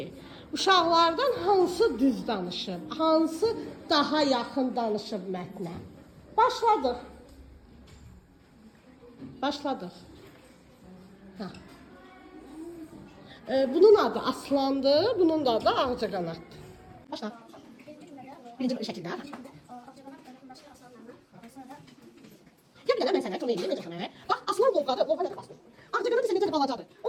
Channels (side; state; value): both; identical; correlation 1.00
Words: uşaqlardan hansı düz danışıb, hansı daha yaxın danışıb mətnə. Başladıq. Başladıq. Ha. Bunun adı Aslandır, bunun da adı Ağcaqanaddır. Başla. Birinci şəkildə. Gəl bir dənə mən sənə çox neyim, necə xənə? Bax, aslan lovğadır, lovğa necə basdır. Ağcaqanad isə necə balacadır.